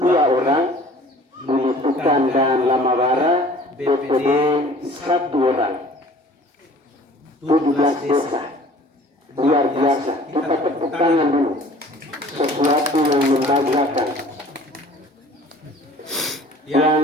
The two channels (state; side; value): normal; both; correlation 0.49